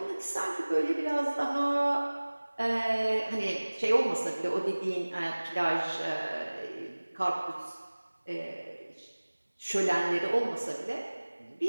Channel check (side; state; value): both; inverted; correlation -1.00